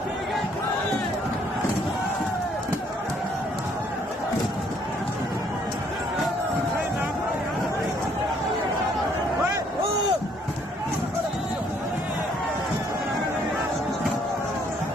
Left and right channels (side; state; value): both; normal; correlation 0.65